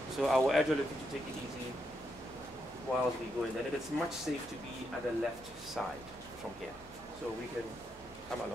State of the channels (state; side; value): normal; both; correlation 0.80